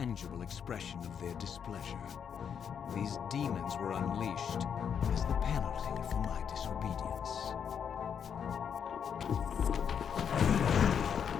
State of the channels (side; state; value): right; quieter; 7.6 dB